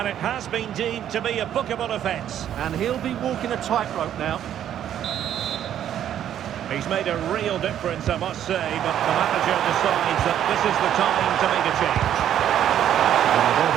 it has been deemed to be a bookable offence. And he'll be walking a tightrope now. He's made a real difference, I must say, but the manager decides that this is the time to make a change. And the ball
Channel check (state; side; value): quieter; left; 10.5 dB